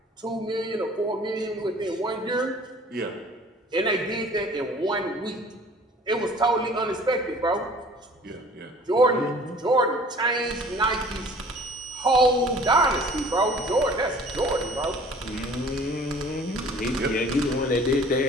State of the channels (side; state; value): both; normal; correlation 0.49